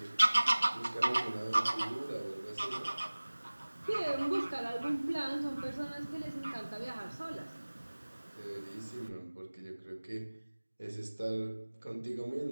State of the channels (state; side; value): inverted; both; correlation -1.00